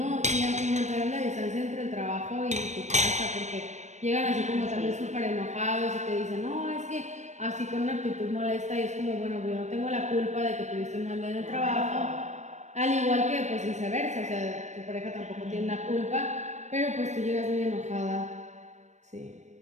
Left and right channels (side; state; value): left; late; 0.34 ms